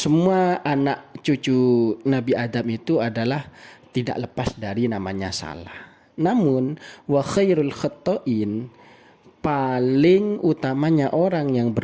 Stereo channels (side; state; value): both; identical; correlation 1.00